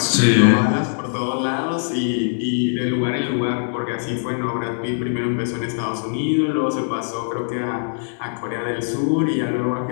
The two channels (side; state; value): right; silent; digital silence